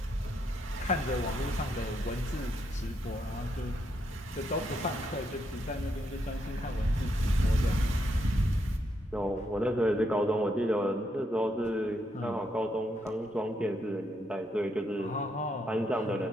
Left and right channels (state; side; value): normal; both; correlation 0.78